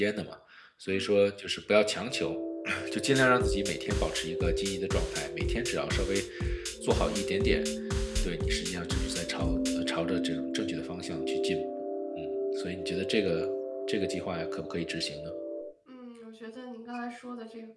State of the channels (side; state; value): both; identical; correlation 1.00